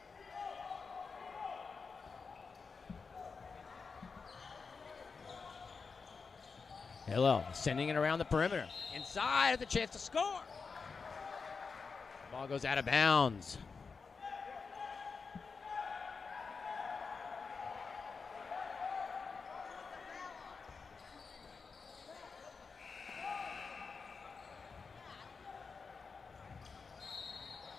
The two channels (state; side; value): quieter; right; 4.9 dB